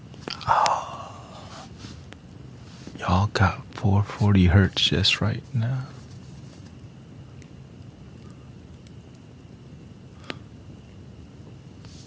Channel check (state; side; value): identical; both; correlation 1.00